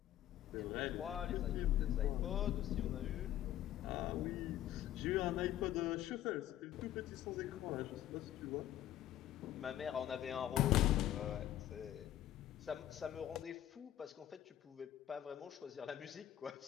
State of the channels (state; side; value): quieter; right; 12.5 dB